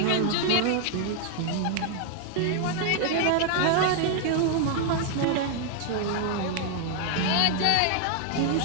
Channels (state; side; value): different; both; correlation 0.00